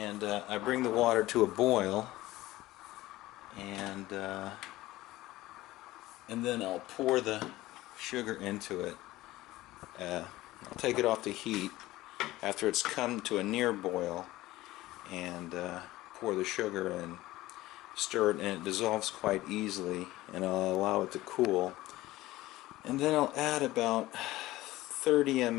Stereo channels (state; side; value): quieter; right; 17.2 dB